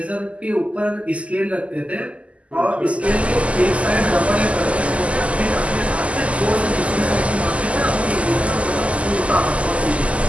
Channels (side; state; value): left; late; 0.062 ms